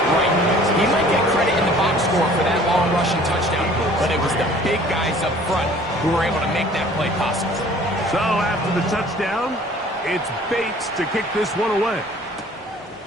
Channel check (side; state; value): both; normal; correlation 0.52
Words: right. He might get credit in the box score for that long rushing touchdown, but it was the big guys up front who were able to make that play possible. So after the touchdown, it's Bates to kick this one away.